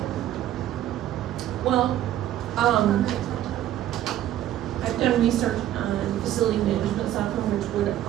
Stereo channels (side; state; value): left; quieter; 12.5 dB